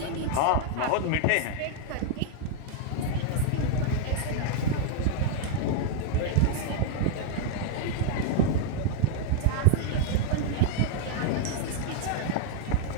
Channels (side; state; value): both; different; correlation 0.00